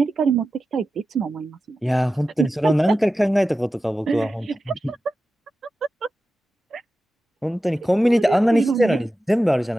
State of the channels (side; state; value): both; normal; correlation 0.93